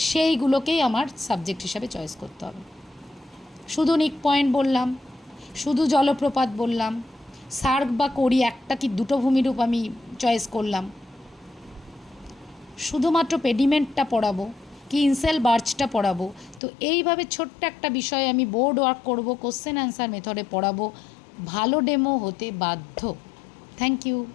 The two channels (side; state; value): right; drops out; at 16.6 s